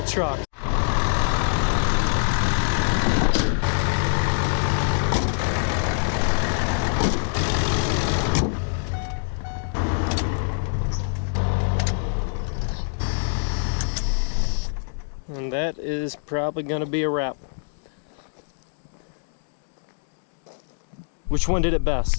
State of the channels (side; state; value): right; silent; digital silence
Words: truck. And that is probably going to be a wrap. Which one did it